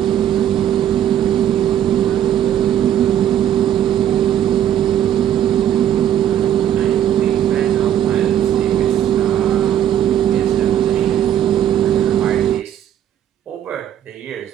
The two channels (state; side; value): quieter; left; 10.7 dB